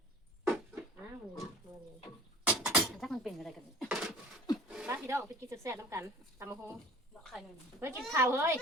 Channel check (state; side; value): normal; both; correlation 0.43